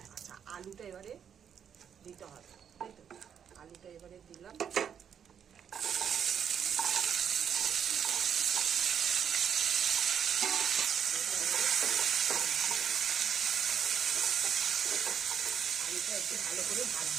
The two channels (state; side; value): quieter; left; 8.1 dB